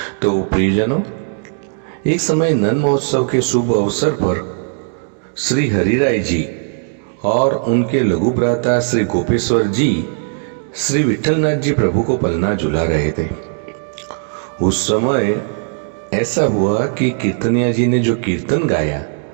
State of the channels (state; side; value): silent; left; 62 dB below the other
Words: तो प्रियजनों, एक समय नंद महोत्सव के शुभ अवसर पर श्री हरिराय जी और उनके लघु भ्राता श्री गोपेश्वर जी श्री विठलनाथ जी प्रभु को पलना झुला रहे थे। उस समय ऐसा हुआ कि कीर्तनिया जी ने जो कीर्तन गाया,